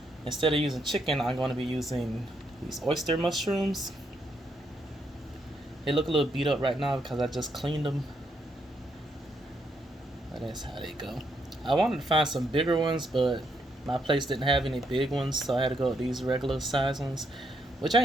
Instead of using chicken, I'm going to be using these oyster mushrooms. They look a little beat up right now because I just cleaned them. But that's how they go. I wanted to find some bigger ones, but my place didn't have any big ones, so I had to go with these regular size ones, which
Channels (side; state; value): both; normal; correlation 0.76